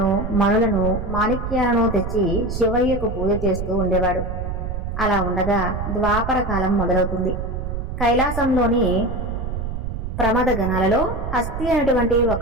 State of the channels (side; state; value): right; noise; rumble, 5 dB below the sound